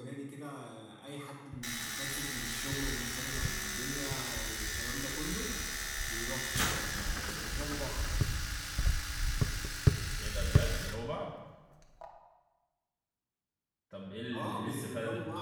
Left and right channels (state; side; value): identical; both; correlation 1.00